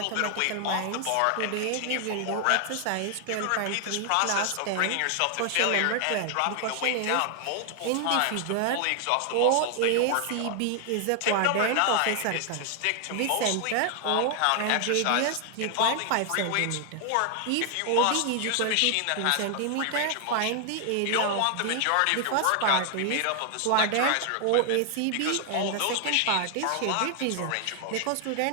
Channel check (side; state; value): both; different; correlation 0.00